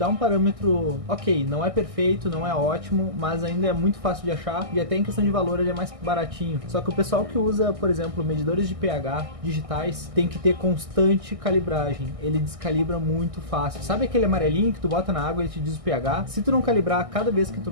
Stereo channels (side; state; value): left; late; 1.6 ms